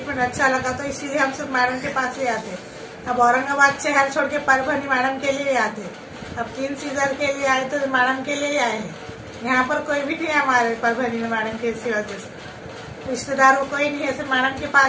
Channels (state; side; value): identical; both; correlation 1.00